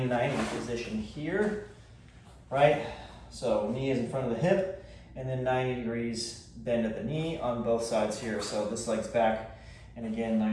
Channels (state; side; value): identical; both; correlation 1.00